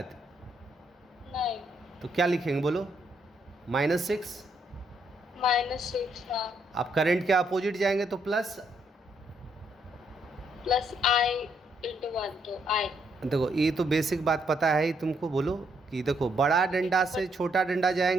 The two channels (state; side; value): normal; both; correlation 0.74